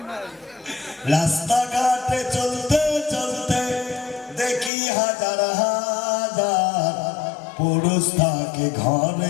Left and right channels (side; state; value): right; drops out; at 4.7 s